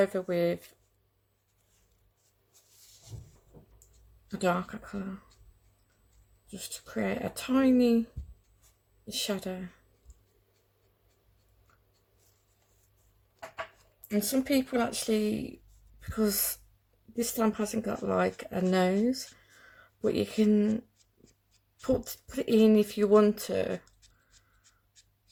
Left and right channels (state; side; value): identical; both; correlation 1.00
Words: with a darker colour, just to create a tiny shadow. And some people actually, because this stamp hasn't got like a nose, but you can put it in if you want to.